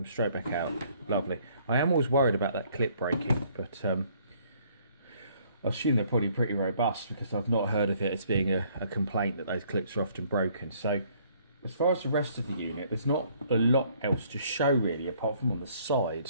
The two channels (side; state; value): both; inverted; correlation -0.62